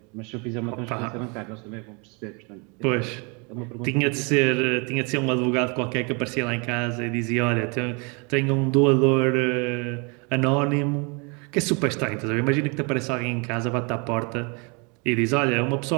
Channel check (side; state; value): left; quieter; 32.5 dB